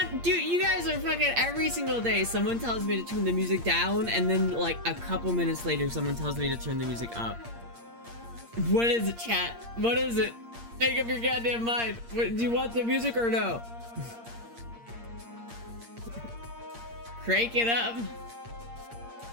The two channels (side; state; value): left; late; 8.6 ms